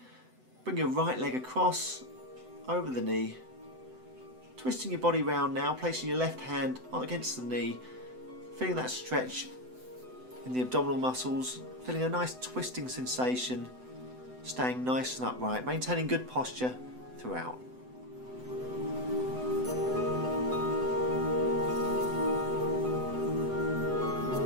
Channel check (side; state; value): left; late; 7.9 ms